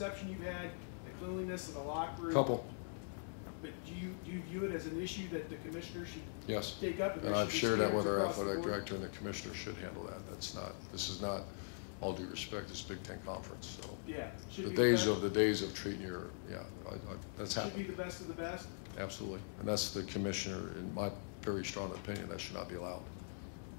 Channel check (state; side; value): silent; right; digital silence